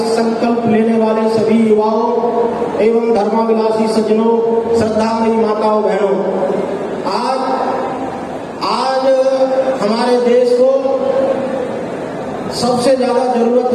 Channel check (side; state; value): both; identical; correlation 1.00